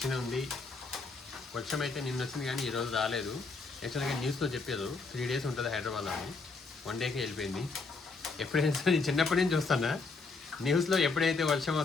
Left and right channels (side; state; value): right; quieter; 4.1 dB